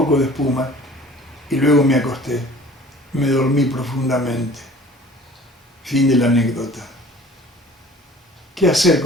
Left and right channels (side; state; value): both; normal; correlation 0.47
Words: de espuma y luego me acosté. Me dormí profundamente. Fin de la anécdota. ¿Qué hacer